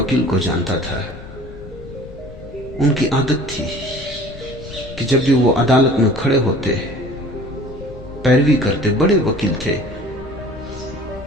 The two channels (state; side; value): noise; left; rumble, 16 dB below the sound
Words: को जानता था। उनकी आदत थी कि जब भी वो अदालत में खड़े होते, पैरवी करते, बड़े वकील थे,